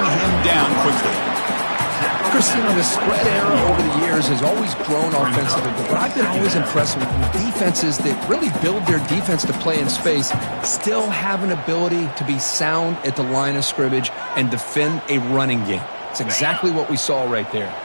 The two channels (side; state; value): both; inverted; correlation -1.00